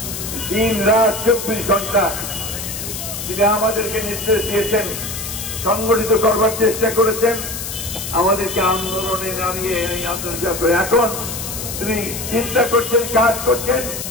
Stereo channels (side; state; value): left; noise; hiss, 6 dB below the sound